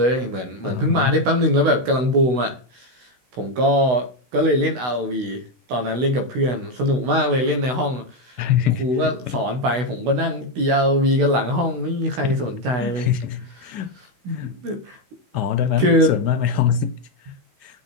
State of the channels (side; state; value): left; late; 16 ms